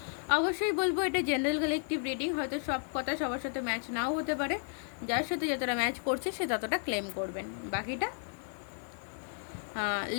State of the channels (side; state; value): right; silent; 56 dB below the other